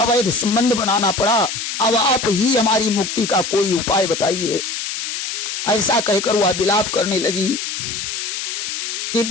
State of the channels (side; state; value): left; noise; hiss, 5 dB below the sound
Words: संबंध बनाना पड़ा। अब आप ही हमारी मुक्ति का कोई उपाय बताइए। ऐसा कहकर वह विलाप करने लगी। कि